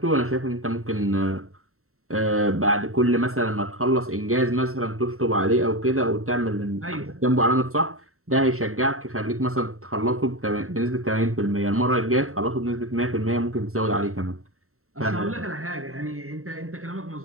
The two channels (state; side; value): late; left; 0.63 ms